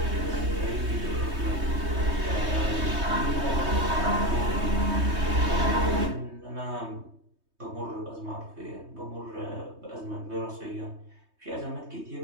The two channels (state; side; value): late; left; 3.2 ms